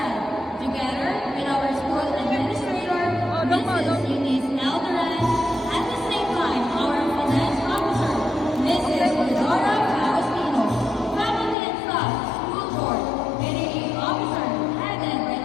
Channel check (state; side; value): drops out; right; at 11.6 s